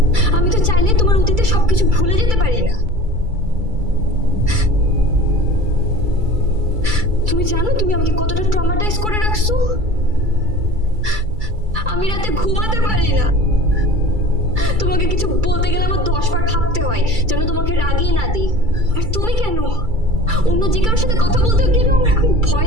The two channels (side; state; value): left; late; 2.3 ms